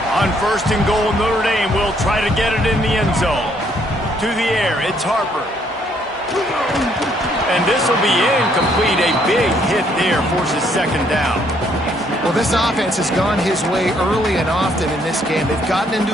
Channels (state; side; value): normal; both; correlation 0.68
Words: On 1st and goal, Notre Dame will try to get it in the end zone. To the air, it's Harper. And this will be incomplete. A big hit there forces 2nd down. Well, this offense has gone his way early and often in this game. They've gotten